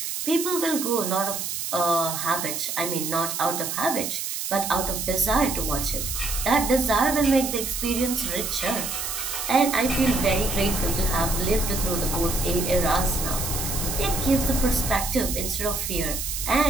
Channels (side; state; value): right; noise; hiss, 4 dB below the sound